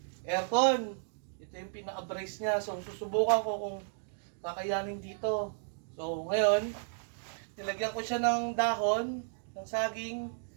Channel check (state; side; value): silent; left; digital silence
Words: aircon. Ito yung pinaka-brace niya. So, susubukan ko kung kakayanin dito. So, ngayon, nilagyan ko siya ng dahon, ng saging,